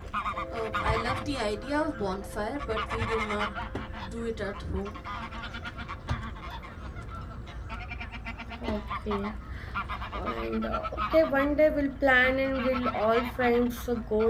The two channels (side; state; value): both; identical; correlation 1.00